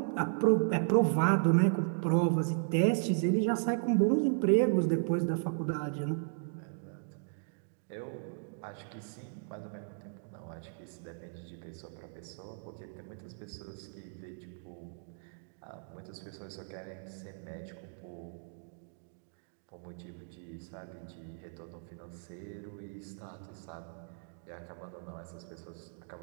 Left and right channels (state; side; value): silent; left; digital silence